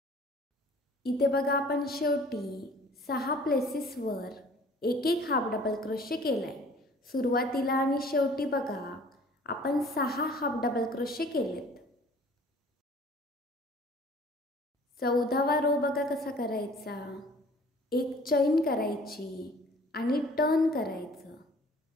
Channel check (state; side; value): normal; both; correlation 0.51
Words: इथे बघा आपण शेवटी 6 प्लेसेसवर एक एक हाफ डबल क्रोशे केलाय. सुरुवातीला आणि शेवटी बघा आपण 6 हाफ डबल क्रोशे केलेत. 14वा रो बघा कसा करायचा. एक चैन करायची आणि टर्न करायचं.